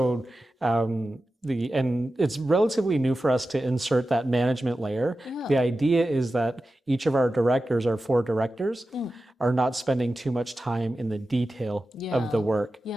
and it's relatively new for us to insert that management layer. The idea is that each of our directors, our 4 directors, are not spending too much time in the detail of the work.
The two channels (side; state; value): both; normal; correlation 0.93